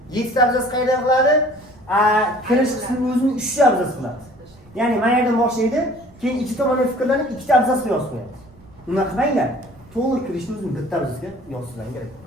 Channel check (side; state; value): right; noise; rumble, 25 dB below the sound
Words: 7 ta abzas qayerda qiladi? Kirish qismi o'zini 3 ta abzas qiladi. Ya'ni mana yerdan boshlaydi, keyin ikki tomondan fikrlanib 2 ta abzasga yozib qo'yadi. Unaqa qilmanglar. To'liq kirishni o'zini bitta abzasga yozishlar kerak.